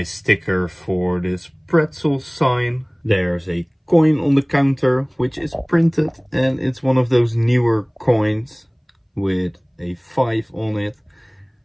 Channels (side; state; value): both; identical; correlation 1.00